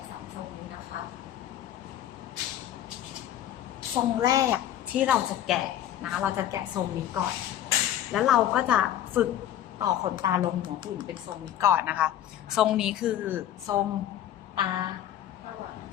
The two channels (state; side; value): quieter; right; 11.5 dB